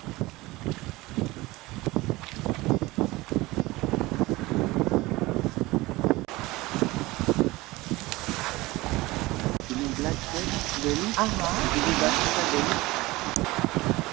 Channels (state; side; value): quieter; left; 20.4 dB